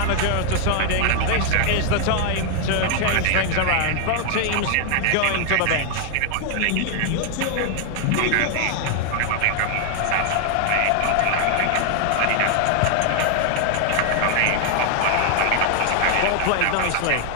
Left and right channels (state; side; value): different; both; correlation 0.00